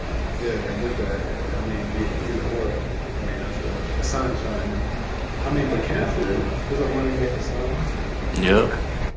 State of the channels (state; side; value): identical; both; correlation 1.00